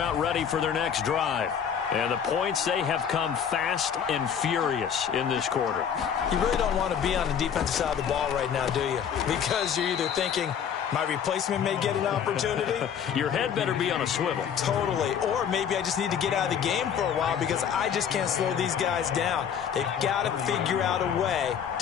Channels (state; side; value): quieter; right; 8.0 dB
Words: ready for their next drive. And the points, they have come fast and furious in this quarter. You really don't want to be on the defensive side of the ball right now, do you? Because you're either thinking, my replacement may get an opportunity. Your head better be on a swivel. Totally. Or maybe I just need to get out of the game for a while because I just can't slow these guys down. They've got to figure out a way